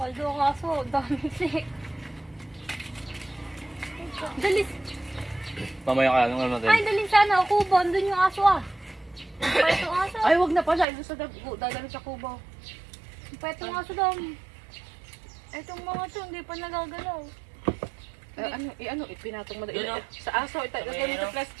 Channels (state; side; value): drops out; left; at 10.9 s